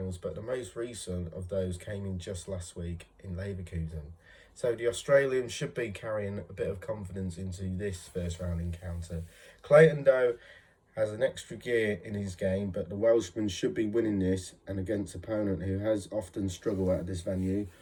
but the most recent of those came in just last week in Leverkusen. So the Australian should be carrying a bit of confidence into this first round encounter. Clayton, though, has an extra gear in his game, but the Welshman should be winning this and against an opponent who has often struggled at this venue.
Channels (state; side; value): identical; both; correlation 1.00